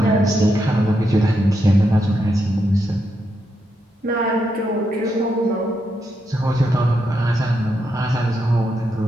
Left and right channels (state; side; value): normal; both; correlation 0.82